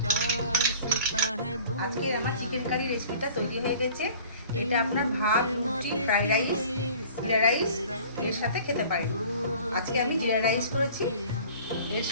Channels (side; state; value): both; inverted; correlation -0.47